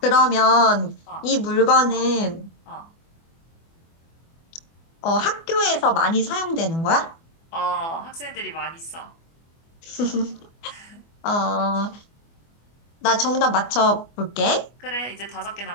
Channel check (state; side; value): late; right; 24 ms